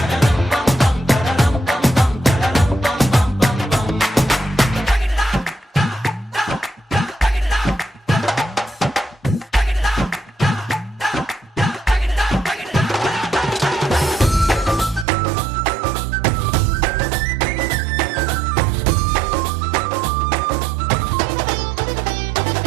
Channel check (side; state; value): left; drops out; at 15.1 s